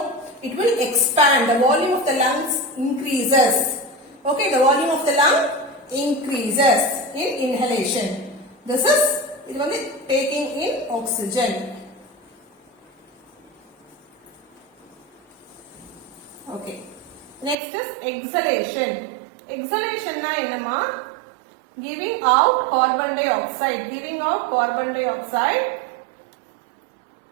It will expand. The volume of the lungs increases. Okay, the volume of the lung increases in inhalation. This is taking in oxygen. Okay. Next is exhalation. Exhalation na enna? Giving out carbon dioxide. Giving out carbon dioxide.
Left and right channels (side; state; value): left; drops out; at 17.6 s